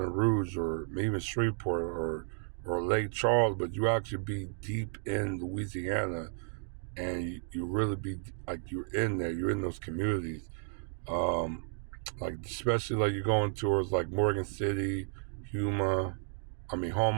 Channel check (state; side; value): silent; left; 56 dB below the other